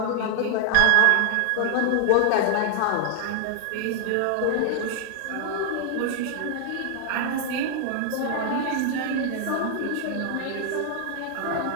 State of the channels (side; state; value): both; different; correlation 0.00